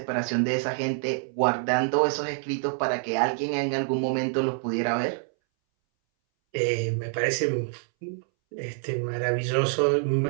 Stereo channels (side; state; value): left; silent; 61 dB below the other